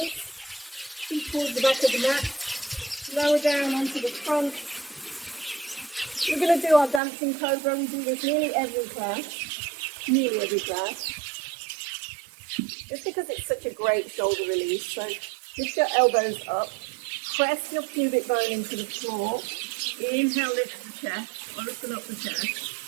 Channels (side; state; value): left; drops out; at 7.0 s